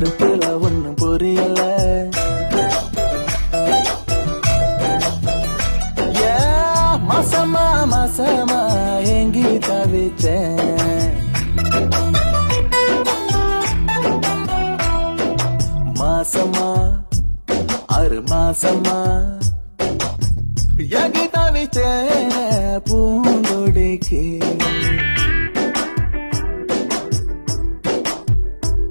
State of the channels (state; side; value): inverted; both; correlation -1.00